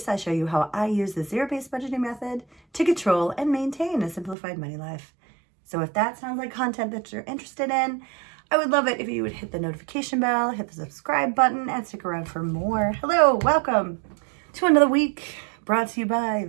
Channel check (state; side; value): drops out; left; at 4.4 s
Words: I show you how I use the zero-based budgeting method to control and maintain a simplified money life. So if that sounds like content that you're interested in, I would love it if you would hit the notification bell, hit the subscribe button, and stick around for more. Hello, welcome to another week brought to you by